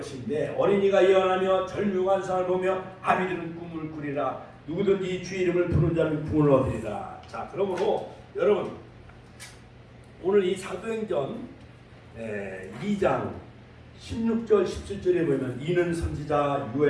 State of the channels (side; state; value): both; identical; correlation 1.00